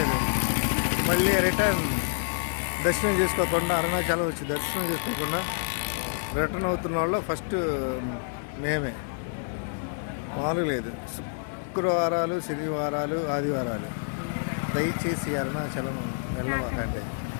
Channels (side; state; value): right; silent; 60 dB below the other